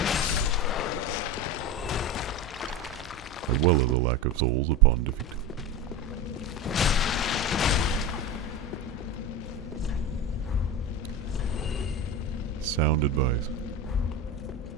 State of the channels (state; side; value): normal; both; correlation 0.24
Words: As well as a lack of souls upon defeat. Sound advice.